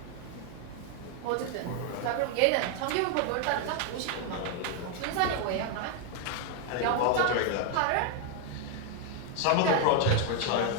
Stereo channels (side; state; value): both; different; correlation 0.01